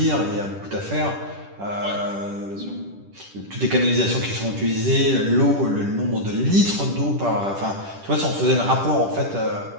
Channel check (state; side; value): late; left; 10 ms